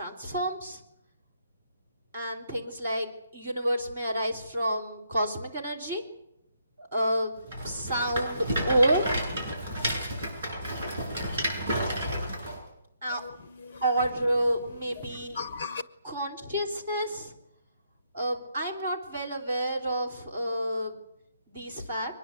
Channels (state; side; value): inverted; both; correlation -0.76